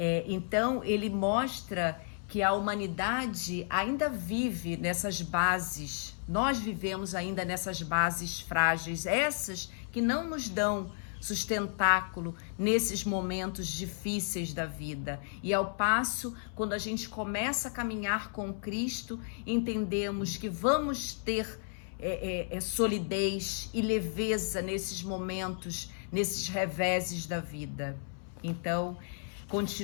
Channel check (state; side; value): silent; right; 56 dB below the other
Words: Então, ele mostra que a humanidade ainda vive nessas bases, nós vivemos ainda nessas bases frágeis, essas que não nos dão sustentáculo nesses momentos difíceis da vida. E ao passo, quando a gente começa a caminhar com Cristo, entendemos que vamos ter solidez e leveza nesses momentos, nesses reveses da vida. Então,